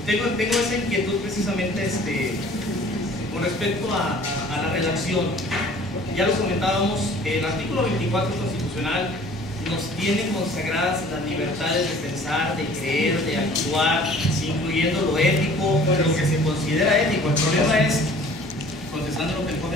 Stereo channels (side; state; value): both; normal; correlation 0.50